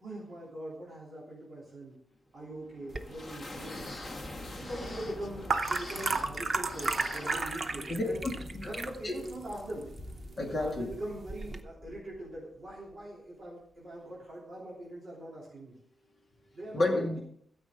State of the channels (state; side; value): normal; both; correlation 0.85